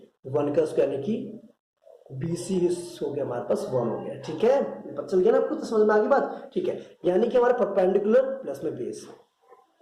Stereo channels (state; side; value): identical; both; correlation 1.00